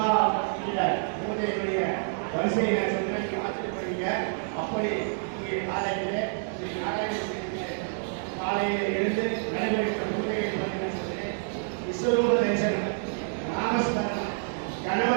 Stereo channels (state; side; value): silent; left; digital silence